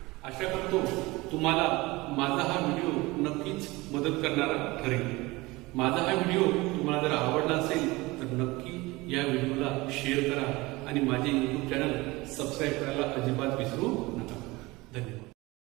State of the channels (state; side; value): quieter; left; 21.9 dB